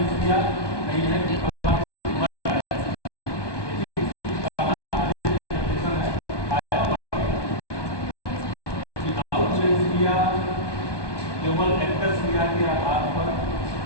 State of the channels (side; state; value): right; late; 1.2 ms